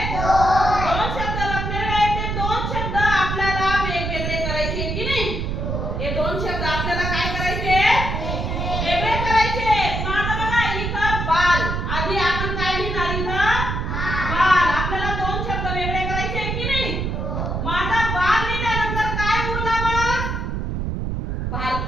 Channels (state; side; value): noise; right; rumble, 2 dB below the sound